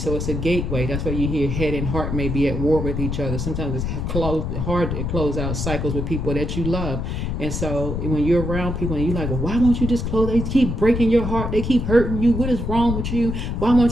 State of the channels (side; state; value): left; noise; rumble, 2 dB below the sound